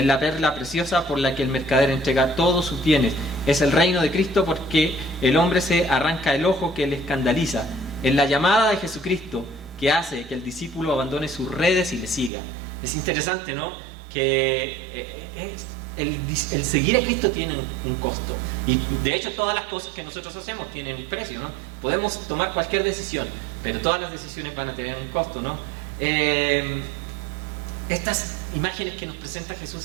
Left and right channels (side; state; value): left; drops out; at 12.3 s